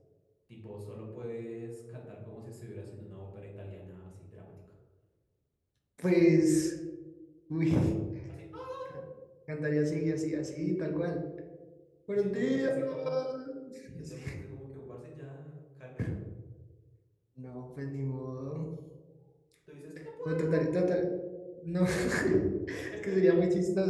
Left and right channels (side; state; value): both; identical; correlation 1.00